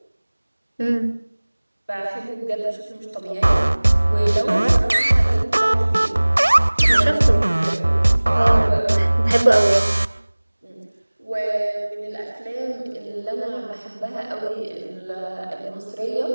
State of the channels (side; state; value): both; inverted; correlation -1.00